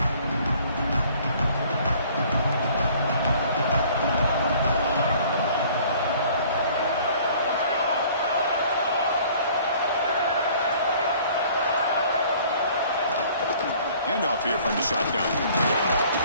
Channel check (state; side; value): inverted; both; correlation -0.54